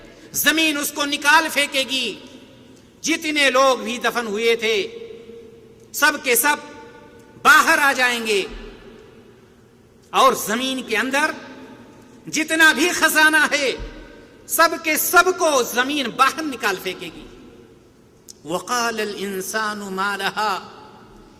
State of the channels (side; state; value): both; identical; correlation 1.00